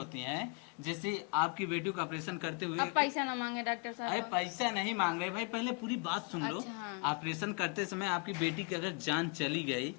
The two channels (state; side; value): quieter; right; 33.7 dB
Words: हैं जैसे आपकी बेटी का ऑपरेशन करते हुए। अब पैसा ना मांगे डॉक्टर अरे साहब। पैसा नहीं मांग रहे भाई पहले पूरी बात सुन लो। अच्छा, हाँ। ऑपरेशन करते समय आपकी बेटी की अगर जान चली गई